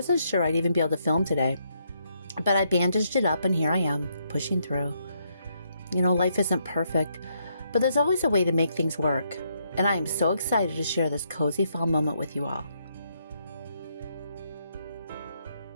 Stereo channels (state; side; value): inverted; both; correlation -0.75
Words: sure I'd even be able to film today, but I bandaged it up and here I am, pushing through. You know, life isn't perfect, but there's always a way to make things work, and I am so excited to share this cozy fall moment with you all.